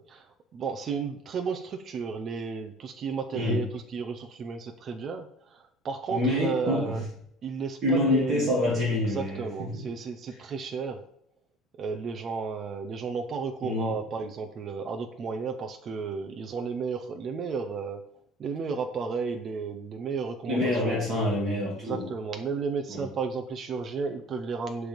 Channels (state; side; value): normal; both; correlation 0.46